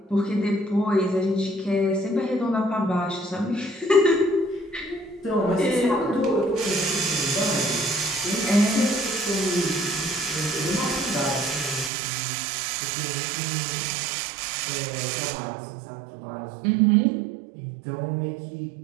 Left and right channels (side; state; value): left; drops out; at 11.9 s